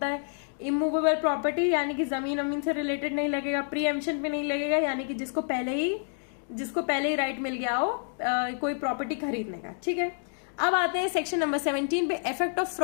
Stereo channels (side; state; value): right; silent; 59 dB below the other